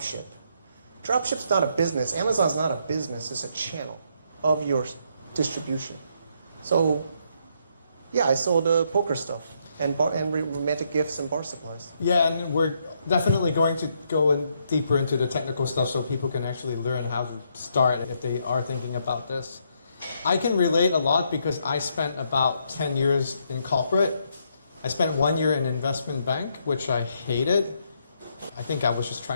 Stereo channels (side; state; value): both; inverted; correlation -0.74